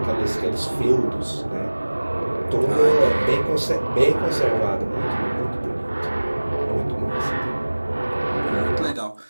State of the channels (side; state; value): both; inverted; correlation -1.00